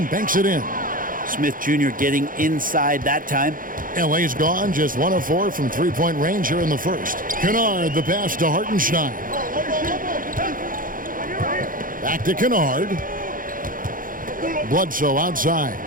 banks it in. Smith Jr. getting inside that time. LA's gone, just 1 of 4 from three-point range here in the first. Kennard, the pass to Hartenstein. Back to Kennard. Bledsoe outside.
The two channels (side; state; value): left; late; 0.40 ms